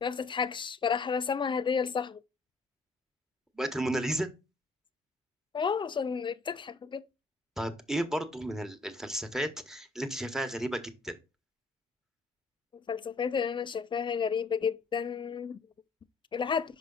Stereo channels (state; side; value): quieter; right; 3.6 dB